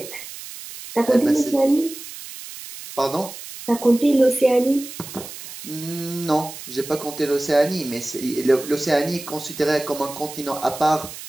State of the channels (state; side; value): noise; right; hiss, 13 dB below the sound